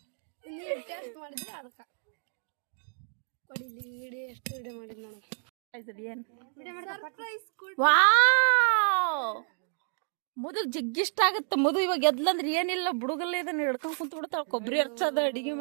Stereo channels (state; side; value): silent; left; 58 dB below the other